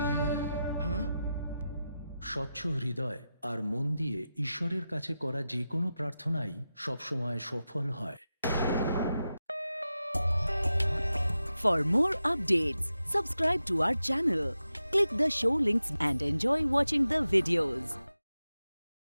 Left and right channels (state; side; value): inverted; both; correlation -0.91